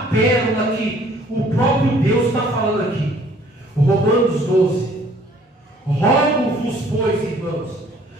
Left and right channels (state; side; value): normal; both; correlation 0.57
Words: pérola que o próprio Deus está falando aqui. Romanos 12. Rogo-vos, pois, irmãos,